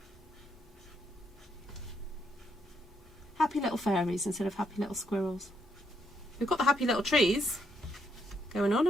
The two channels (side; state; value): both; normal; correlation 0.76